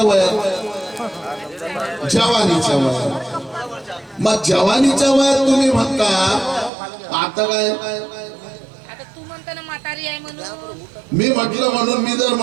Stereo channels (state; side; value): drops out; left; at 6.7 s